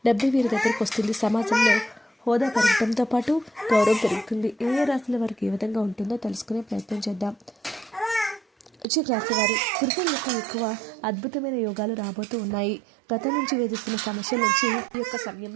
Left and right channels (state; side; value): drops out; left; at 8.8 s